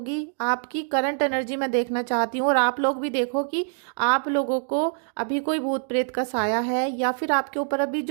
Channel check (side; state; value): left; silent; digital silence